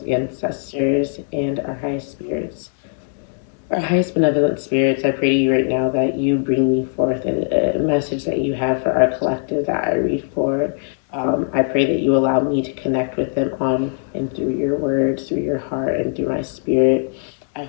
ancestors, and our highest spirits, our highest benevolent spirits, I pray to you right now that you bring me forth a message that you have for our collective that I read for. I pray that you allow me to connect with them on and through your words, through your heart, and through my spirit. I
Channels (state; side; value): silent; right; digital silence